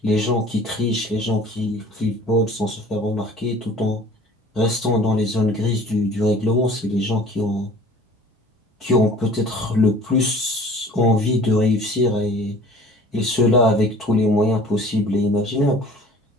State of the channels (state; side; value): normal; both; correlation 0.47